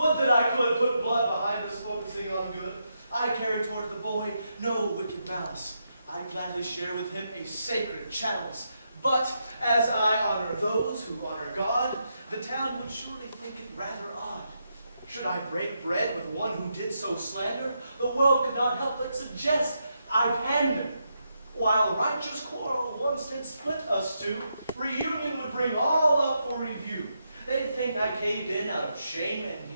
that I could put blood behind us focusing on good. I carry toward the boy no wicked malice. I gladly share with him a sacred chalice. But as I honor those who honor God, the town would surely think it rather odd. Should I break bread with one who did so slander, the world could not help but suggest I pander. While righteous quarrel once did split us two, reunion would bring all up for review. They'd think I caved in out of shame and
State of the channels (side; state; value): both; inverted; correlation -0.82